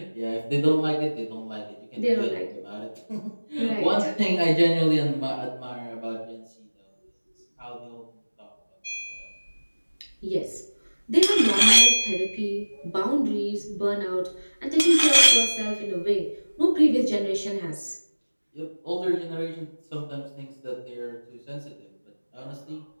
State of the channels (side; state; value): both; inverted; correlation -1.00